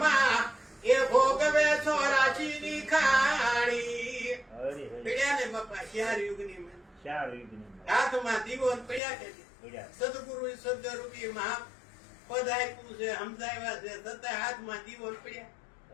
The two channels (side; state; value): right; drops out; at 9.0 s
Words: એ ભોગવે 84ની ખાણી. હરે હરે પડ્યા ને બાપા 4 યુગની માં. 4 યુગની હાથમાં દીવો ને પડ્યા કે નહીં? પડ્યા સદગુરુ સદરૂપી મહા પદ આપ્યું છે, સમજાવ્યા છે, છતાં હાથમાં દીવો ને પડ્યા.